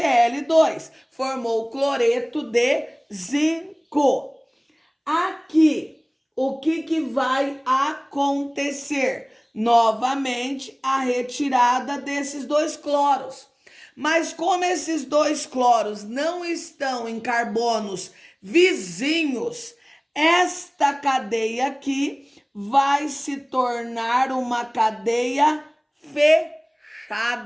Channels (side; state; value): both; identical; correlation 1.00